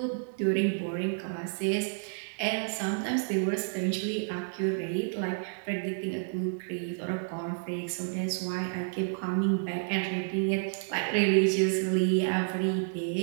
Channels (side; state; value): left; silent; digital silence